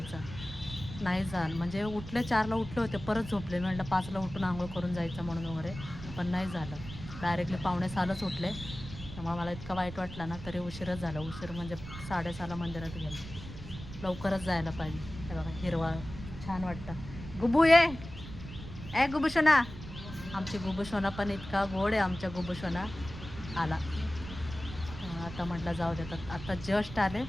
नाही झालं, म्हणजे उठले 4ला उठले होते, परत झोपले. मी म्हटलं 5ला उठून आंघोळ करून जायचं म्हणून वगैरे, पण नाही झालं. डायरेक्टली पावणे 6लाच उठले. त्यामुळे मला इतका वाईट वाटला ना, तरी उशीरच झाला. उशीर म्हणजे 6:30ला मंदिरात गेलो. लवकरच जायला पाहिजे. हे बघा हिरवा छान वाटतं. गुबू ए गुबू शोना. आमची गुबू शोना पण इतका गोड आहे. आमच्या गुबू शोना आला. आता म्हटलं जाऊ देतात. आता जस्ट आले,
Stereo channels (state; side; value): noise; right; rumble, 12 dB below the sound